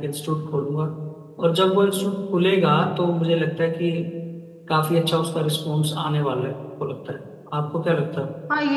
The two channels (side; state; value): both; identical; correlation 1.00